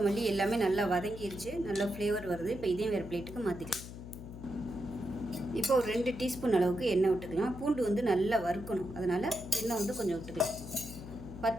எல்லாமே நல்லா வதங்கிருச்சு, நல்லா ஃப்ளேவர் வருது. இப்போ இதையும் வேறு பிளேட்டுக்கு மாற்றிக்கலாம். இப்போ ஒரு 2 டீஸ்பூன் அளவுக்கு எண்ணெய் விட்டுக்கலாம். பூண்டு வந்து நல்லா வறுக்கணும், அதனால் எண்ணெய் வந்து கொஞ்சம் விட்டுக்கலாம்.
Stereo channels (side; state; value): left; noise; hum, 12 dB below the sound